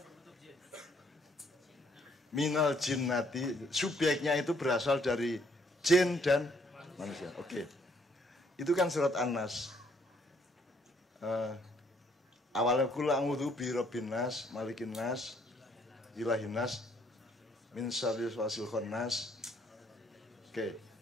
Minal jinnati, subjeknya itu berasal dari jin dan manusia. Oke. Itu kan surat An-Nas. awalnya kula a'udzu bi rabbin nas, malikin nas, ilahin nas, min syarri wasil khannas. Oke.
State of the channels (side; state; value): both; normal; correlation 0.66